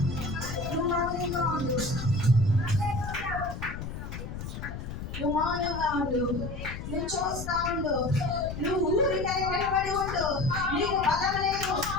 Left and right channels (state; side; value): noise; left; rumble, 8 dB below the sound